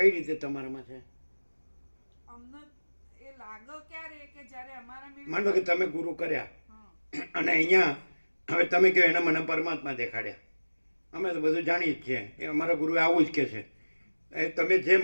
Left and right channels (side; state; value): both; inverted; correlation -1.00